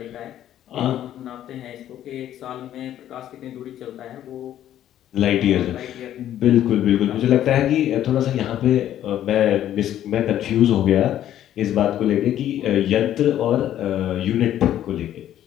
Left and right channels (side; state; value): right; quieter; 11.7 dB